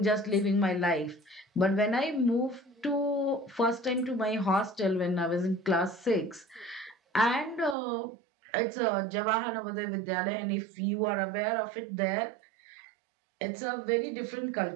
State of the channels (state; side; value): drops out; left; at 7.8 s